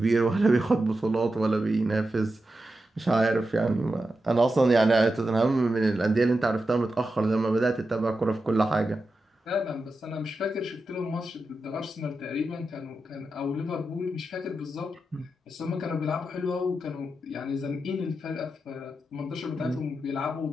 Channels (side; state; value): both; normal; correlation 0.89